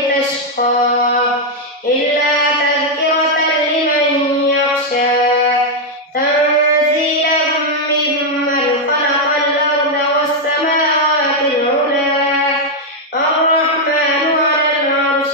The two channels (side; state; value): both; normal; correlation 0.00